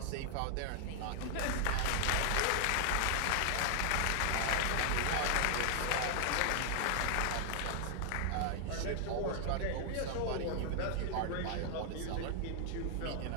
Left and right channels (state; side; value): different; both; correlation 0.00